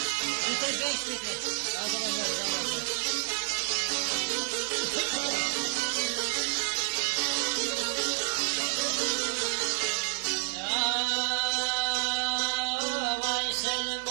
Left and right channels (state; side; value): silent; left; 58 dB below the other